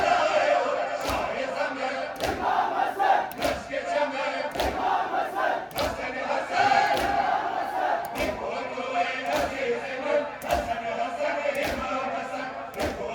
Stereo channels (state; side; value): identical; both; correlation 1.00